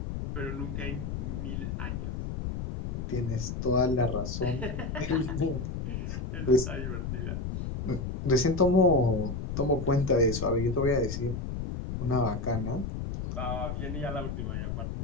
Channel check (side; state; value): left; noise; rumble, 4 dB below the sound